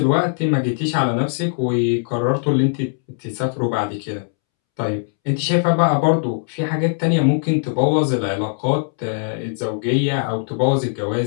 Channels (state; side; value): silent; right; 66 dB below the other